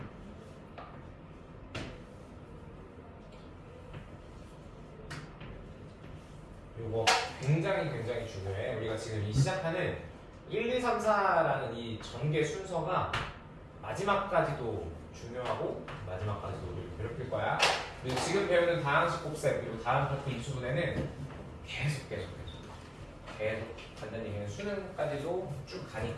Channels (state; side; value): identical; both; correlation 1.00